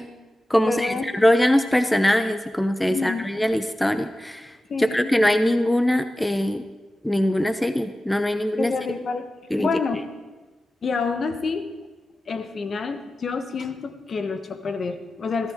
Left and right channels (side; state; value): both; normal; correlation 0.94